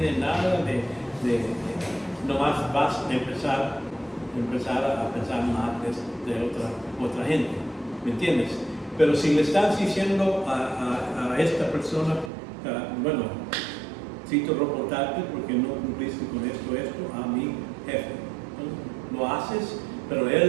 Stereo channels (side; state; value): left; drops out; at 12.3 s